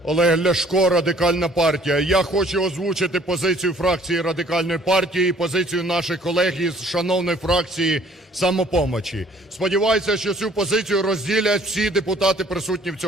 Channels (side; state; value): both; normal; correlation 0.57